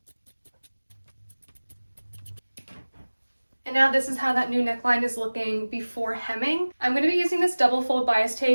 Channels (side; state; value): both; inverted; correlation -1.00